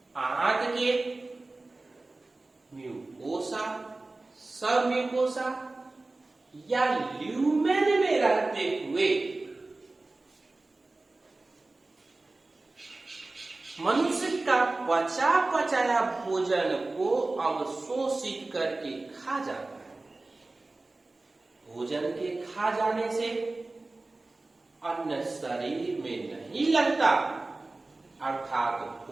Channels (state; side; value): quieter; left; 3.2 dB